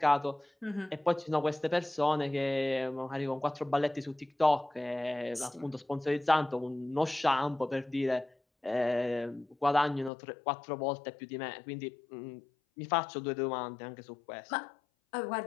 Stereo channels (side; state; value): right; drops out; at 10.1 s